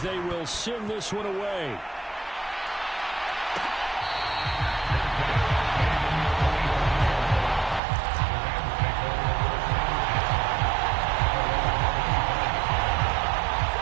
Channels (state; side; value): drops out; left; at 7.8 s